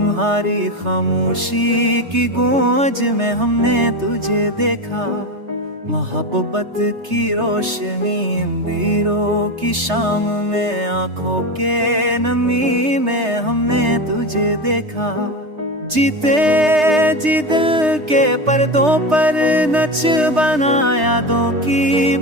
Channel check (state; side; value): late; left; 3.3 ms